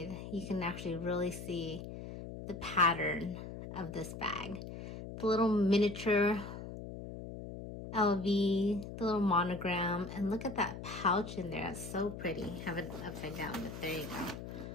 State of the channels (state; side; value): noise; left; hum, 9 dB below the sound